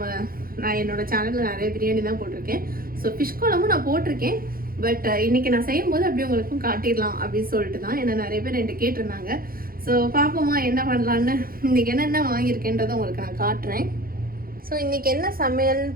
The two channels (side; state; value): left; late; 0.42 ms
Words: நான் என்னோட சேனலில் நிறைய பிரியாணி தான் போட்டிருக்கேன். ஸோ ஃபிஷ் குழம்பும் நான் போட்டிருக்கேன். பட் இன்றைக்கி நான் செய்யும்போது அப்படியே உங்களுக்கும் காட்டிடலாம் அப்படின்னு சொல்லிட்டு தான். ஏன்னா நிறைய பேர் என்கிட்ட கேட்டிருந்தாங்க. ஸோ பார்ப்போமா என்ன பண்ணலான்னு. இன்றைக்கி என்னென்ன வாங்கியிருக்கேன்றதை உங்களுக்கு நான் காட்டுறேன். ஸோ இன்றைக்கி என்ன சமையல்னு